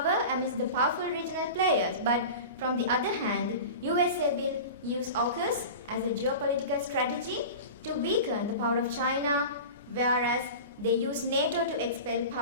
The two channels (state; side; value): inverted; both; correlation -0.32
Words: amidst the powerful regional players. But from the other hand, USA will use AUKUS as a geopolitical strategy to weaken the power of China, whereas they use NATO to expel